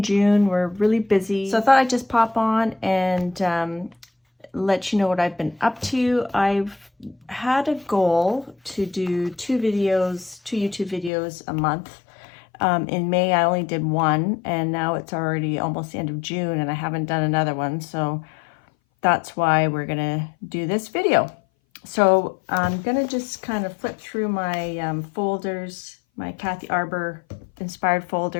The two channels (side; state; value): right; drops out; at 11.1 s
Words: June were really busy, so I thought I'd just pop on and let you know what I've been up to. I've had a goal to do two YouTube videos a month. In May, I only did one, and now it's already almost the end of June, and I haven't done another one, so that's why we're gonna do this video. So I'm gonna just kind of flip through my folders, my Kathy Arbor inspired